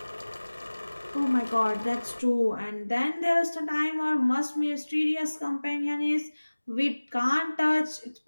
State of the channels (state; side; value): inverted; both; correlation -1.00